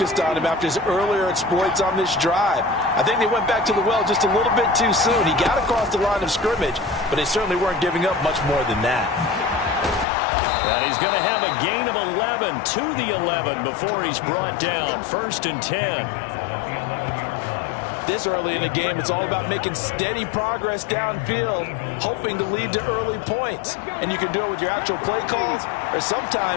on him after his earlier exploits on this drive. I think they went back to the well just a little bit too soon. He got across the line of scrimmage, but they certainly weren't giving up much more than that. And he's going to have a gain of 11 to the 11 before he's brought down. 1st and 10. This early in the game, it's all about making steady progress downfield, hoping to lead to early points. And you can do it with your actual play calls or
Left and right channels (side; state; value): right; drops out; at 10.1 s